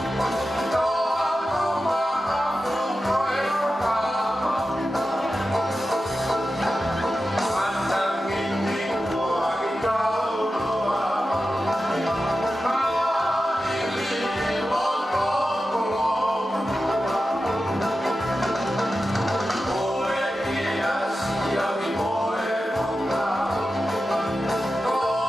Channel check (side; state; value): both; normal; correlation 0.92